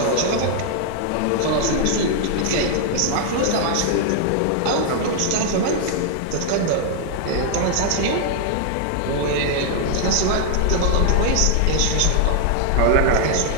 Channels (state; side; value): different; both; correlation 0.00